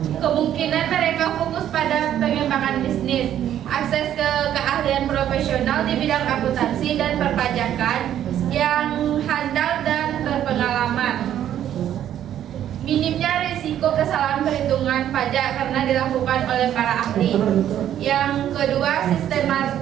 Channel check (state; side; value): quieter; left; 10.9 dB